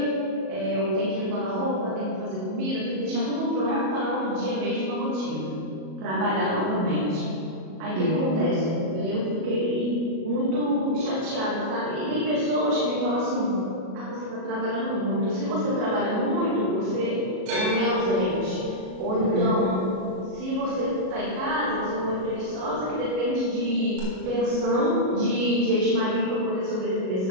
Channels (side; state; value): left; late; 37 ms